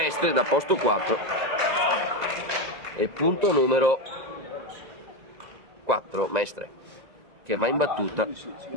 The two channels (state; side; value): late; left; 1.9 ms